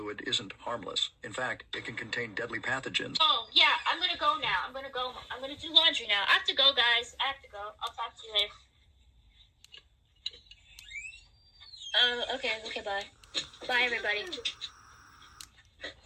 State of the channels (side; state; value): both; identical; correlation 1.00